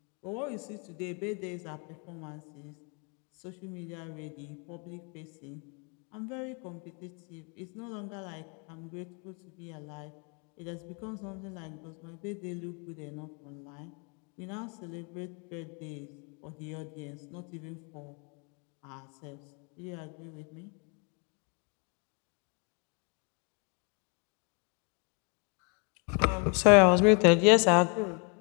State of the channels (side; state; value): right; quieter; 35.6 dB